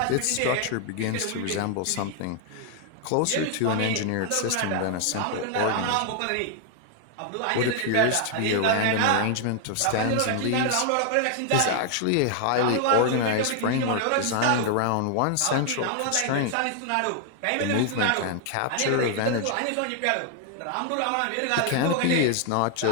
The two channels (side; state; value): both; different; correlation 0.00